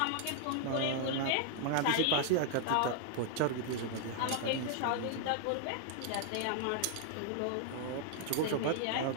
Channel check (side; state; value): both; different; correlation 0.00